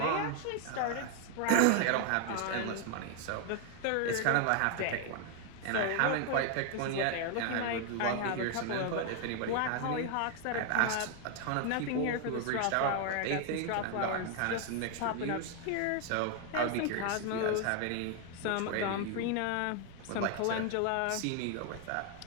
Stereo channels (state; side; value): different; both; correlation 0.00